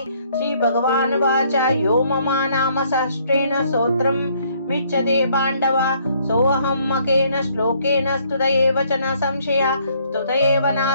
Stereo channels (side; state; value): both; inverted; correlation -0.65